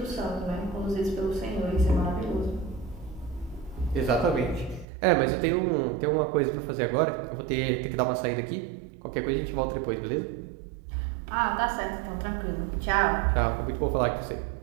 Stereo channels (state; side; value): drops out; left; at 4.9 s